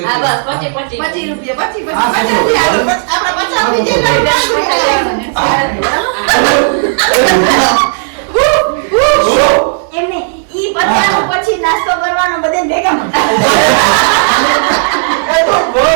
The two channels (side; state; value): left; silent; digital silence